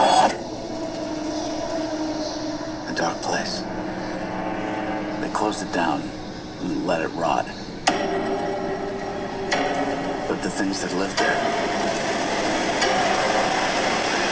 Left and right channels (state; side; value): identical; both; correlation 1.00